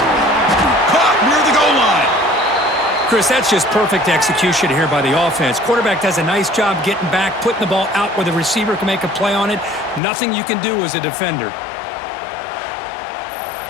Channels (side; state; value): right; drops out; at 10.0 s